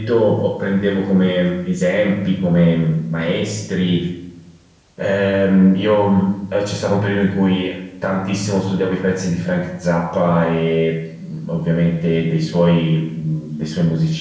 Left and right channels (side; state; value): both; identical; correlation 1.00